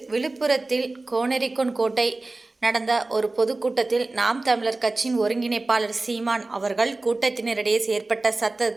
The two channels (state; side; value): quieter; left; 3.2 dB